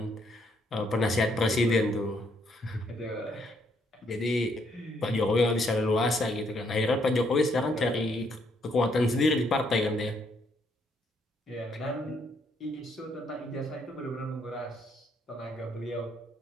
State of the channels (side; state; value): both; normal; correlation 0.72